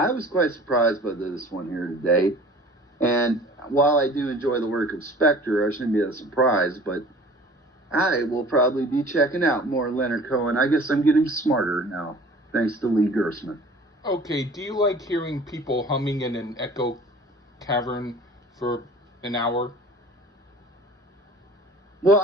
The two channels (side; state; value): both; normal; correlation 0.46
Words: was quite surprised by this one here today. And while I do enjoy the work of Spector, I shouldn't be that surprised, but I will probably be checking out more Leonard Cohen. I guess I'm getting smarter now, thanks to Lee Gersman. Okay, do you like hearing people humming in an echo cavern for an hour? Well,